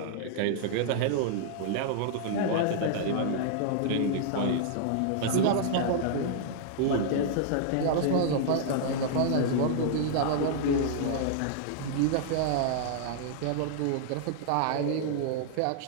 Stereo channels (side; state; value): both; different; correlation -0.01